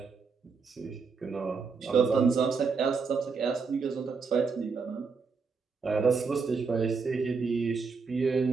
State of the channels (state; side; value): quieter; left; 5.0 dB